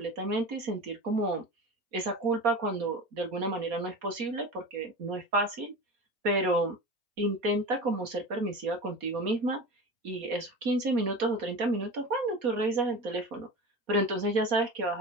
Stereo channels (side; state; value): left; late; 4.2 ms